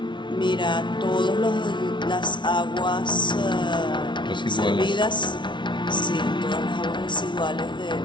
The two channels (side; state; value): right; late; 0.23 ms